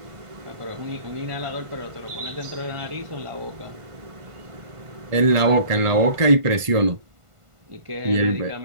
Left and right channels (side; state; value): left; late; 1.5 ms